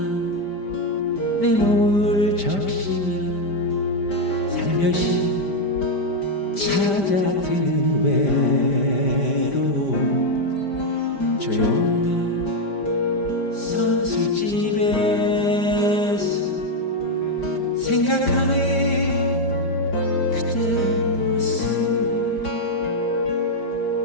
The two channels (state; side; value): late; right; 5.1 ms